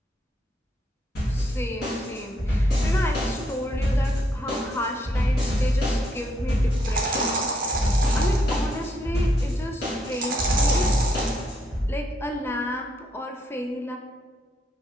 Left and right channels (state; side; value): normal; both; correlation 0.75